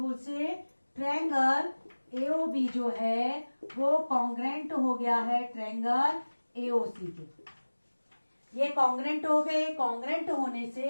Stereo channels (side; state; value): both; inverted; correlation -1.00